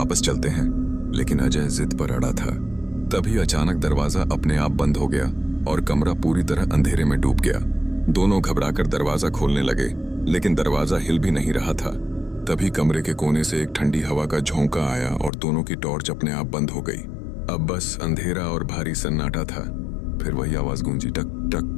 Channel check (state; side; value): drops out; right; at 15.3 s